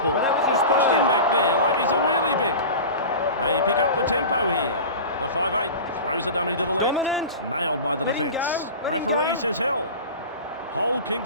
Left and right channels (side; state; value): both; inverted; correlation -0.32